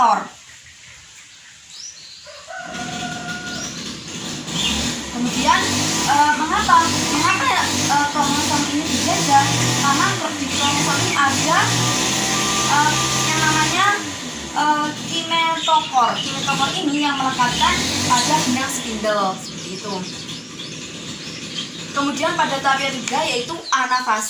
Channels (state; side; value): identical; both; correlation 1.00